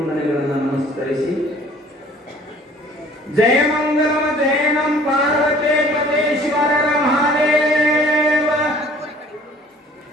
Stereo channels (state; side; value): normal; both; correlation 0.52